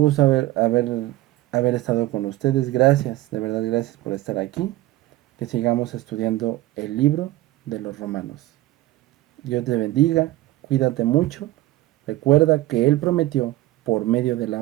haber estado con ustedes. Gracias, de verdad, gracias por estar aquí. Que sigamos estudiando el libro de los Romanos. Dios te bendiga, cuídate mucho. Recuerda que Él prometió por medio de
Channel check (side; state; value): left; quieter; 16.7 dB